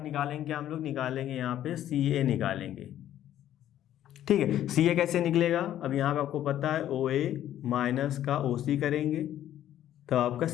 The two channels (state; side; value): quieter; right; 11.8 dB